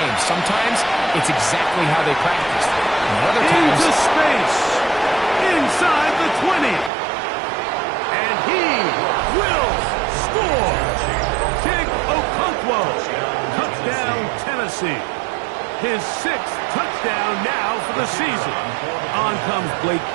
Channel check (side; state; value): left; drops out; at 6.9 s